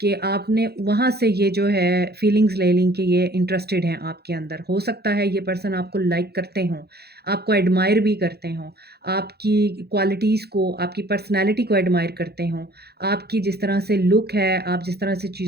कि आपने वहाँ से ये जो है फीलिंग्स ले ली कि ये इंटरेस्टेड हैं आपके अंदर। हो सकता है ये पर्सन आपको लाइक करते हों, आपको एडमायर भी करते हों, आपकी क्वालिटीज़ को, आपकी पर्सनैलिटी को एडमायर करते हों, आपकी जिस तरह से लुक है, आप जिस तरह से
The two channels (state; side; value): late; left; 0.47 ms